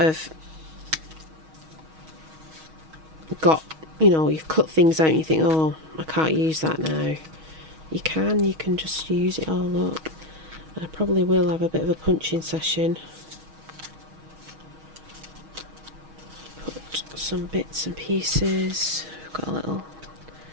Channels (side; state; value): left; late; 6.3 ms